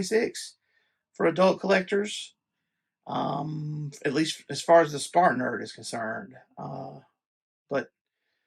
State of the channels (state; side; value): identical; both; correlation 1.00